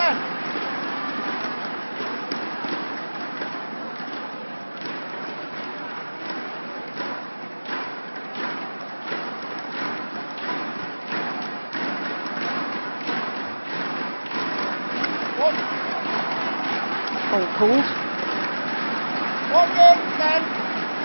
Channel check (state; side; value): inverted; both; correlation -1.00